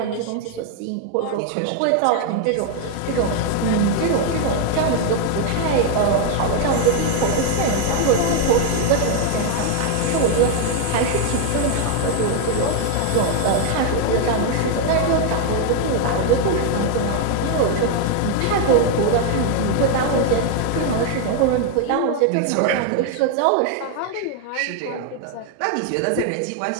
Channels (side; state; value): both; different; correlation 0.00